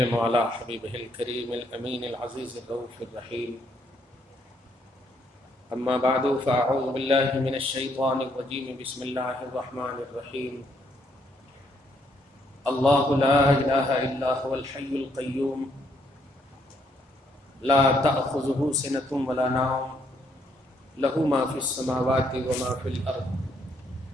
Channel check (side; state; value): both; normal; correlation 0.72